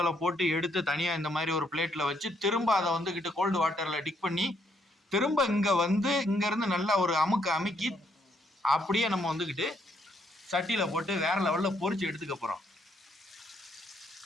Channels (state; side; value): normal; both; correlation 0.72